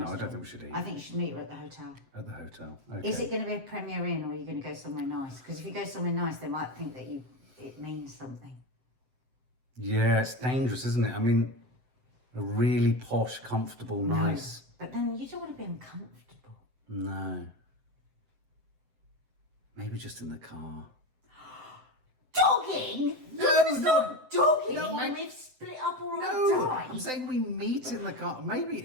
I restaurant. don't think we should eat. I think you should meet her at the hotel. At the hotel. Okay. Is it going to be a Premier Inn, or are you going to go somewhere nice? Because if you go somewhere nice, they might think that it means something. Yeah, it's dangerous, isn't it? I mean, a really posh, comfortable, nice. But then you don't want to be uncomfortable. No. Maybe just in the car. Dogging? No, It's not dogging No, when I- we've split up or No, I die. I'm saying we meet in the car. Maybe,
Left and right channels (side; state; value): left; late; 7.8 ms